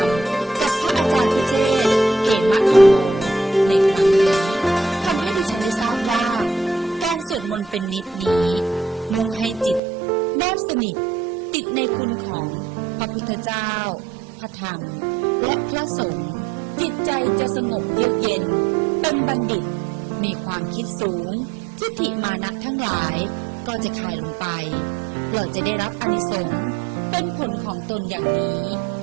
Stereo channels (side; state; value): left; drops out; at 9.8 s